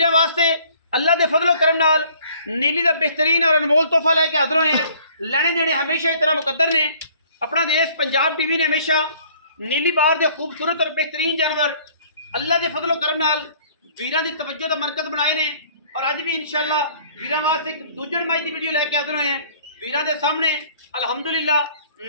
वास्ते अल्लाह के फजलो करम नाल नीली का बेहतरीन और अनमोल तोहफा लैके हाजिर होए हैं। लेने देने हमेशा की तरह मुकद्दर ने। अपना देश पंजाब टीवी ने हमेशा नीली बार के खूबसूरत और बेहतरीन जानवर अल्लाह के फजलो करम नाल वीरां दी तवज्जो का मरकज बनाए ने। और अज भी इंशाअल्लाह वीरां वास्ते एक दूजड़ माई की वीडियो लैके हाजिर होए हैं। वीरां दे सामने अल्हम्दुलिल्लाह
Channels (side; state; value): both; inverted; correlation -0.56